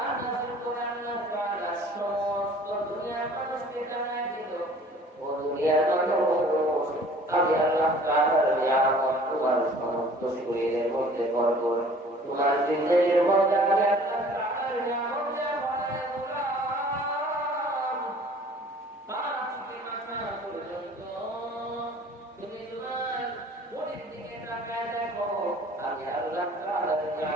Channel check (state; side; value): normal; both; correlation 0.50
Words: নাযিল করে আল্লাহ তাআলা সমস্ত দুনিয়ার মানুষকে জানায় দিল, ও দুনিয়ার মানুষ, আমি আল্লাহ তাআলার নিয়ামত তোমার সমস্ত শরীরের মধ্যে ভরপুর। তোমার জিন্দেগির মধ্যে আমি আল্লাহ তাআলার নিয়ামত বানায় দিলাম। পাঁচ থেকে মাথা পর্যন্ত তুমি তোমার বডির দিকে তাকায় দেখো, আমি আল্লাহ তাআলার